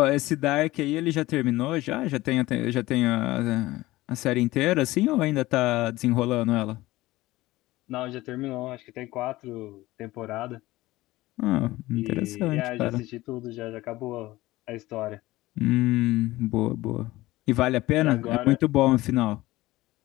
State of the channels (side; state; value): right; quieter; 18.2 dB